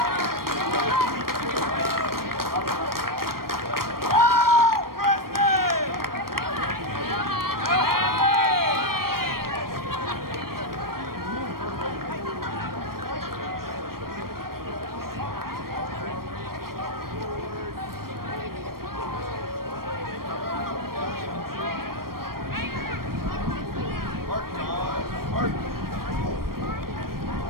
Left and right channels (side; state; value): left; late; 0.93 ms